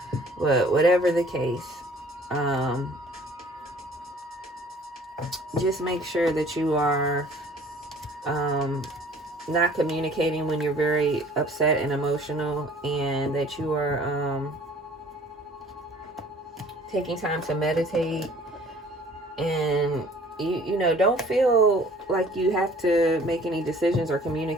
But whatever the case, just make sure that you are not communicating when you're very upset and emotional, and that you are taking time to meditate. And you know, don't feel like you have to make any decisions or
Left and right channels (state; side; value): normal; both; correlation 0.53